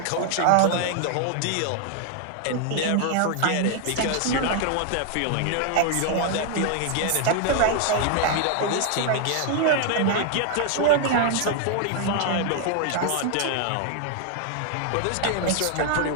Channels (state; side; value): different; both; correlation 0.00